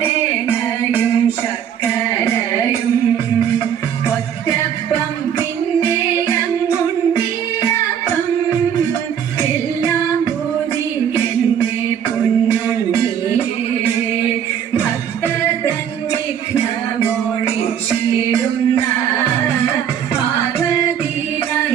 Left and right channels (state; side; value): quieter; left; 8.8 dB